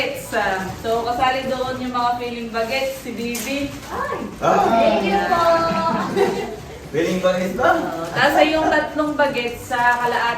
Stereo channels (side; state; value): both; identical; correlation 1.00